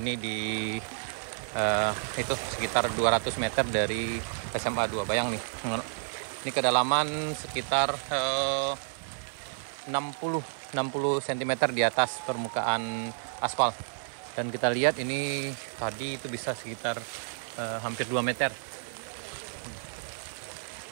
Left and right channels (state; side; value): silent; left; digital silence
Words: Ini di itu sekitar 200 meter dari SMA 2 Bayang nih. Ini kedalaman sekitar 60 cm di atas permukaan aspal. Dan kita lihat ini tadi itu bisa sekitar hampir 2 meter.